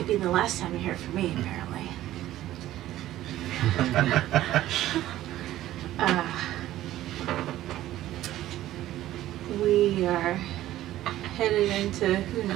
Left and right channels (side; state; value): left; quieter; 14.2 dB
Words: be the last time you hear from me, apparently. We are headed into who